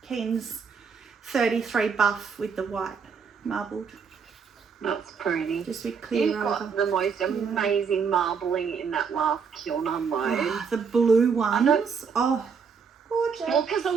Keane's 33 buff with the white marbled. That's pretty. Just with clear You've got the most amazing marbling in that last kiln unload. Oh, the blue ones. Oh, gorgeous. Well, because I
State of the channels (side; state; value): left; quieter; 6.0 dB